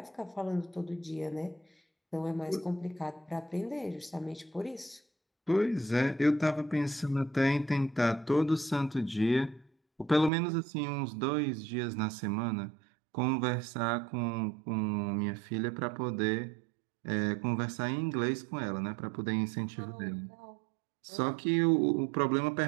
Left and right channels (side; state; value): left; drops out; at 10.3 s